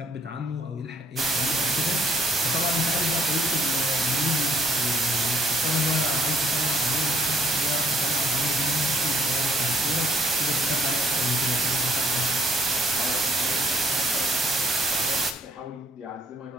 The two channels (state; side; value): normal; both; correlation 0.64